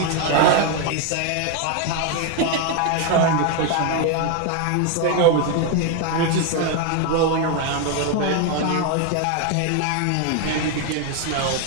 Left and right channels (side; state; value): both; different; correlation 0.01